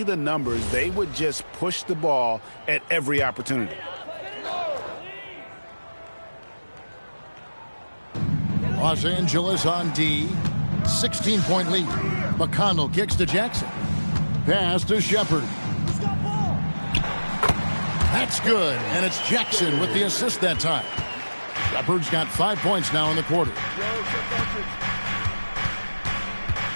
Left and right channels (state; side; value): inverted; both; correlation -1.00